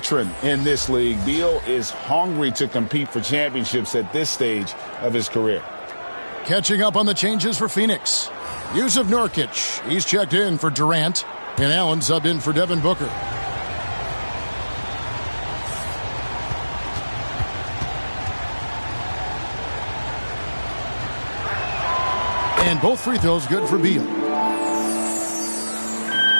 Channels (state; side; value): inverted; both; correlation -1.00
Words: in this league, Beal is hungry to compete for championships at this stage of his career. Catching up on the changes for Phoenix. Yusuf Nurkic, he's checked in for Durant. And Allen subbed in for Devin Booker. And both free throws good for Beal.